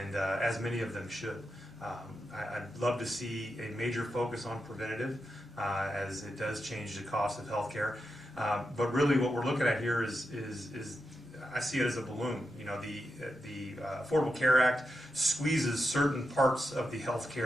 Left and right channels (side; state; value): both; normal; correlation 0.87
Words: as many of them should. I'd love to see a major focus on preventative, as it does change the cost of healthcare. But really, what we're looking at here is I see it as a balloon. The Affordable Care Act squeezes certain parts of the